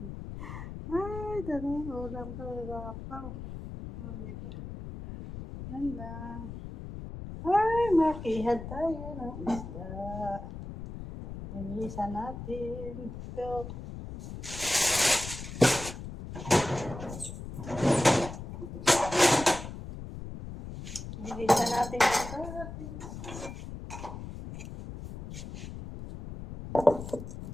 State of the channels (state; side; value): noise; left; rumble, 10 dB below the sound